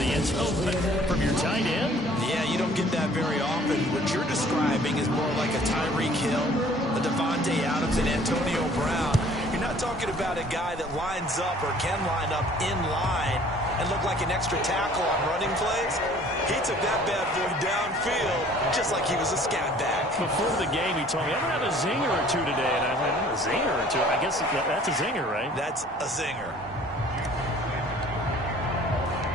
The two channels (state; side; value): normal; both; correlation 0.54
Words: end zone, but from your tight end? Yeah, you don't get that very often. What you're describing is more like a Tyreek Hill, a Devontae Adams, and Antonio Brown. You're not talking about a guy that lines up or can line up in line and look like an extra tackle on running plays. He took that bad boy downfield just like he was a scat back. Before the game, he told me, I'm going to have a zinger or 2 today. And I went, a zinger or 2? I guess that's a zinger, right? That's a zinger.